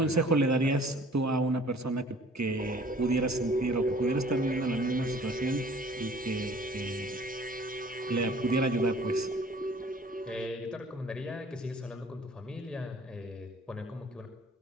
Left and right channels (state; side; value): normal; both; correlation 0.52